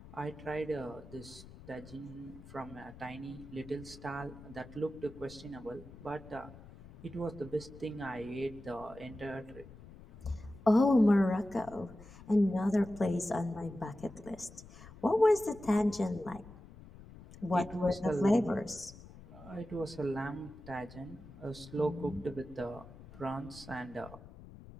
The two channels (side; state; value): left; noise; rumble, 18 dB below the sound